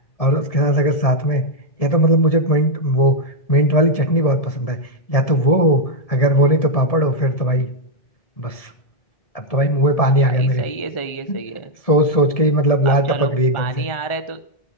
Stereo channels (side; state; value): right; late; 1.7 ms